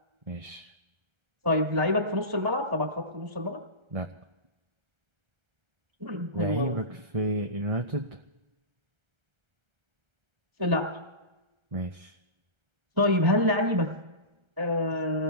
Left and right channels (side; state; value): left; late; 1.3 ms